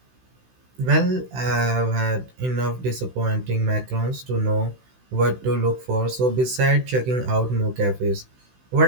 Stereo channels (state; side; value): late; left; 16 ms